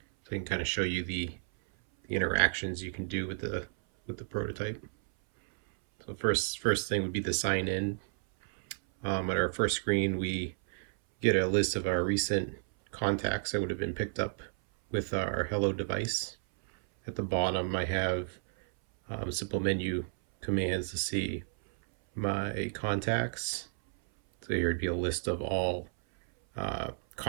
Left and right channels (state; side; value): silent; left; 56 dB below the other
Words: I can kind of show you the interactions you can do with the prototype. So first thing would be the sign in. At our first screen, we get a list of our recent contacts that would have been picked up with our Hello device. At the bottom, I have simple menu commands to see my contacts. So here would be a list of all